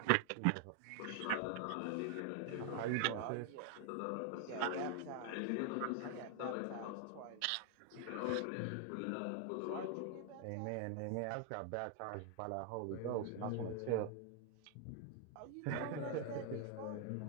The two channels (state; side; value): different; both; correlation 0.00